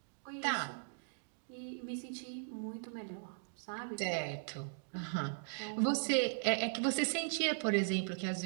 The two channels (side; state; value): left; silent; digital silence